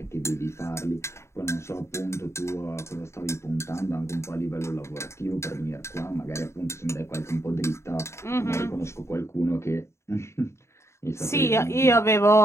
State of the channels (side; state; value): right; late; 0.13 ms